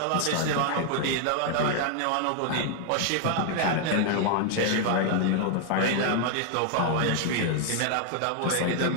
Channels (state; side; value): different; both; correlation 0.00